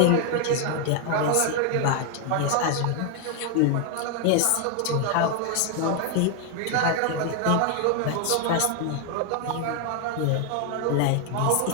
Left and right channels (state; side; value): different; both; correlation 0.00